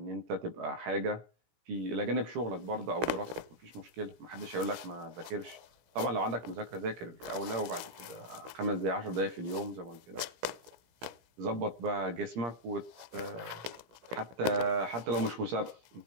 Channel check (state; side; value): late; left; 17 ms